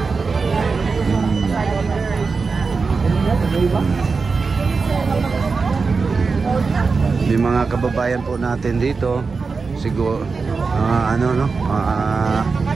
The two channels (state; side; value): quieter; left; 4.6 dB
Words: May mga kababayan po natin dito, siguro